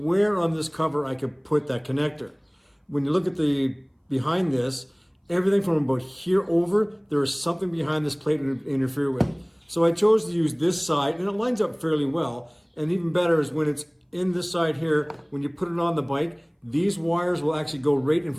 on this cover I could put that connector. When you look at the behind this, everything from about here over, there is something behind this plate to interfere with. So I chose to use this side, and it lines up fairly well. And even better is when it's in this side here, when you put it on the bike, these wires will actually go right in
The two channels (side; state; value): both; identical; correlation 1.00